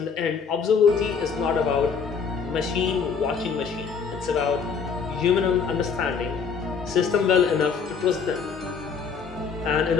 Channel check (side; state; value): right; quieter; 5.9 dB